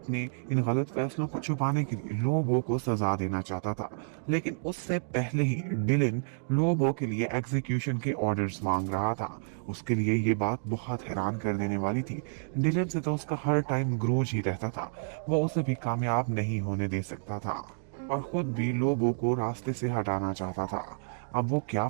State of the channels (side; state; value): left; silent; digital silence